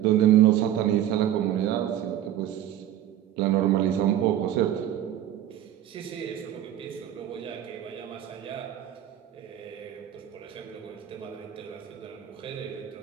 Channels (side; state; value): left; quieter; 11.8 dB